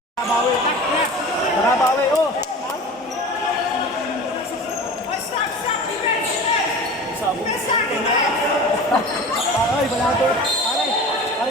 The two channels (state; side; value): normal; both; correlation 0.36